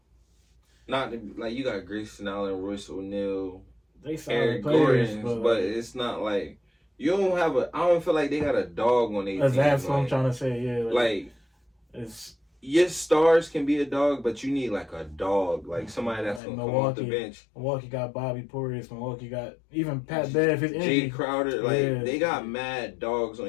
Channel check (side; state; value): right; drops out; at 16.4 s